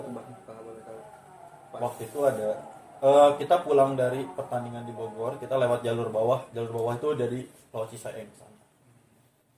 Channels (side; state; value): both; identical; correlation 1.00